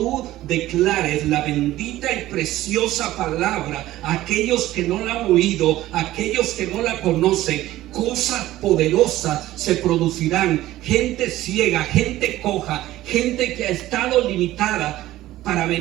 declares la bendita y preciosa palabra a aquellos que no la han oído, a aquellos que no la conocen, cosas poderosas se producirán. Gente ciega, gente coja, gente que ha estado limitada para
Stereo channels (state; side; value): quieter; left; 15.4 dB